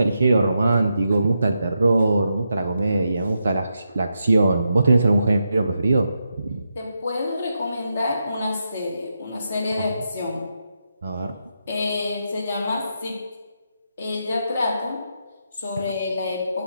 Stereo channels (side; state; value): both; inverted; correlation -0.84